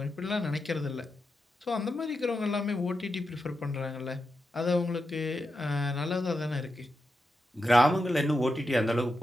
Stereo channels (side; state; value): both; normal; correlation 0.88